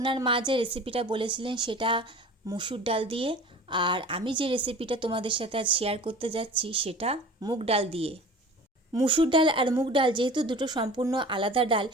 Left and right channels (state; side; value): normal; both; correlation 0.40